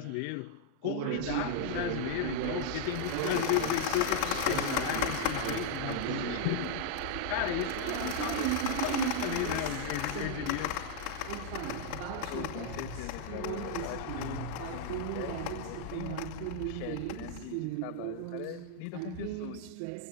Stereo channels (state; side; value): different; both; correlation 0.00